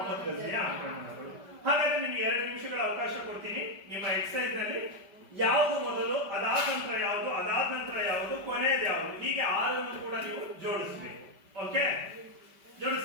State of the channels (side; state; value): left; late; 5.1 ms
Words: ಗಜ್ನಿಯ ಆಕ್ರಮಣಗಳು. ಹಾಗಾದ್ರೆ ನಿಮ್ಗೆ 2 ನಿಮಿಷಗಳ ಅವಕಾಶ ಕೊಡ್ತೀನಿ. ನಿಮ್ಮ ಎಕ್ಸರ್ಸೈಸ್ ನಲ್ಲಿ ಯಾವುದು ಮೊದಲು, ಅದಾದ ನಂತರ ಯಾವುದು, ಅದಾದ ನಂತರ ಯಾವುದು, ಕೊನೆಯದು ಯಾವುದು, ಹೀಗೆ 6 ಕೂಡ ನೀವು ಜೋಡಿಸಬೇಕು. ಓಕೆ,